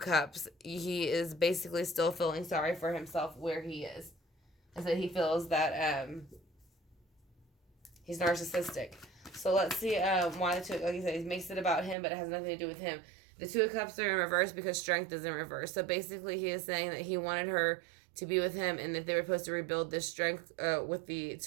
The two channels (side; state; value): left; drops out; at 12.0 s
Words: he is basically still feeling sorry for himself where he is. I said he feels that he's narcissistic. So let's see why the two, like I said, he makes it about him, but it has nothing to do with him. The Two of Cups are in reverse because strength is in reverse. So basically, he is saying that he wanted her to be with him and that they were supposed to rebuild this strength with the